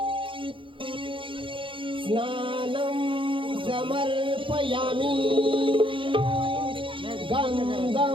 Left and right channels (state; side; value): late; left; 0.25 ms